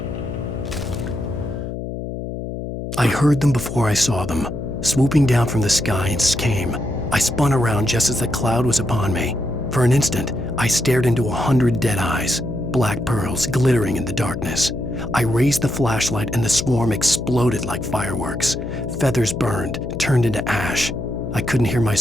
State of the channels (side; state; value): left; noise; hum, 6 dB below the sound